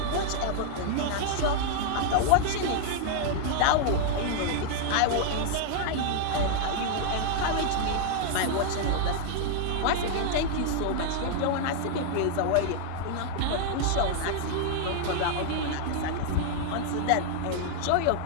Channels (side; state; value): both; different; correlation 0.00